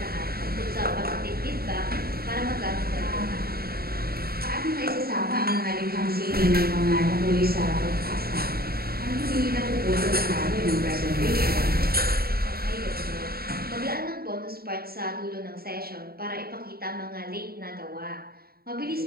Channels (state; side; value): late; left; 0.44 ms